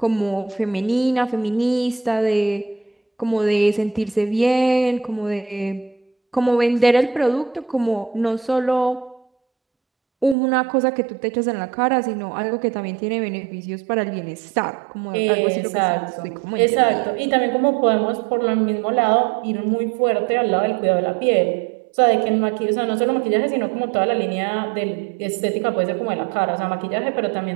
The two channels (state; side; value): drops out; left; at 10.4 s